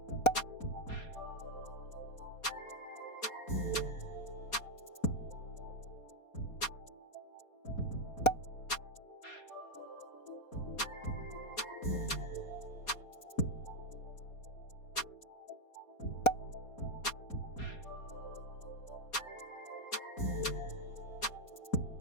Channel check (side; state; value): right; late; 4.2 ms